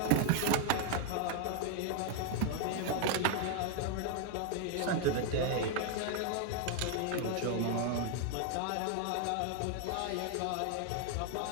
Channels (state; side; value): different; both; correlation 0.00